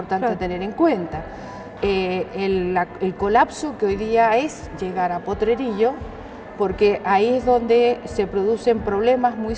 a tener en cuenta. El colapso que hoy día es llegar a Potrerillo, porque ahí es donde se producen problemas muy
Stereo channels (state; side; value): identical; both; correlation 1.00